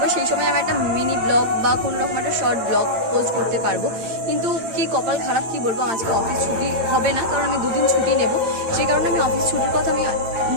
সেই সময় আমি একটা মিনি ব্লগ বা কোনো রকম একটা শর্ট ব্লগ পোস্ট করতে পারবো, কিন্তু কি কপাল খারাপ, কি বলবো, আজকে অফিস ছুটি হবে না, কারণ আমি 2 দিন ছুটি নেব। সেই কারণে আমি অফিস ছুটির কথা আমি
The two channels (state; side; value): late; left; 8.8 ms